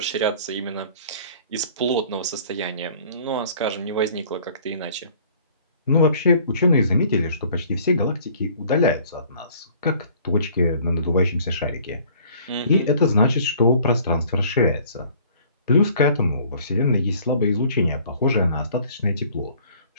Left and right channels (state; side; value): inverted; both; correlation -0.54